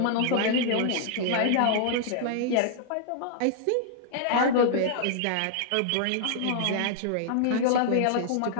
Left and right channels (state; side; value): different; both; correlation -0.01